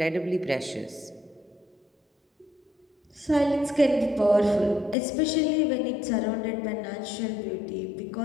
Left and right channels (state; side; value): drops out; right; at 5.0 s